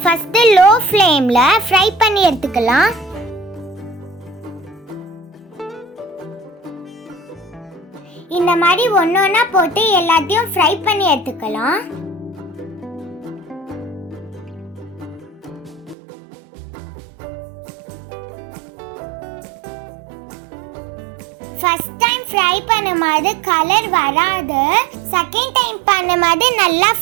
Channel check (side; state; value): left; drops out; at 16.0 s